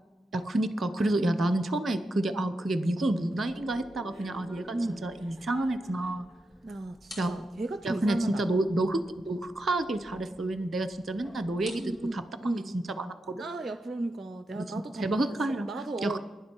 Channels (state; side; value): normal; both; correlation 0.87